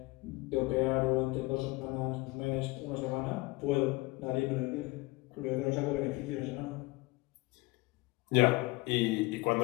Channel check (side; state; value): right; quieter; 22.9 dB